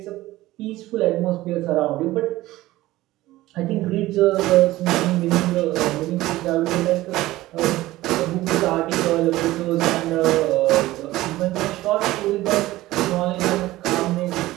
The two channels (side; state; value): left; quieter; 17.1 dB